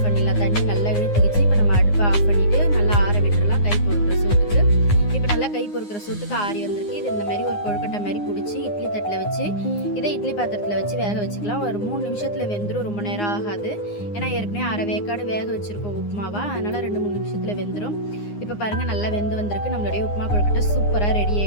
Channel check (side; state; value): right; late; 9.7 ms